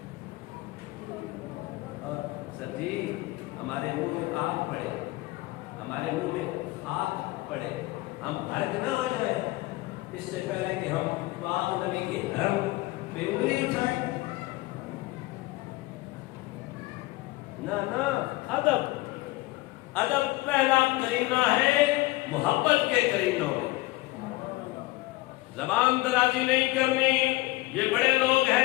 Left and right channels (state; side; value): quieter; right; 20.3 dB